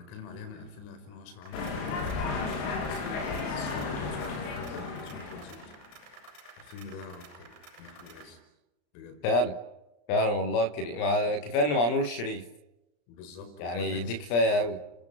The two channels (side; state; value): right; late; 34 ms